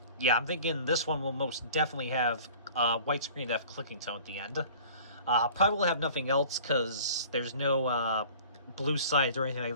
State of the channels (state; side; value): inverted; both; correlation -0.46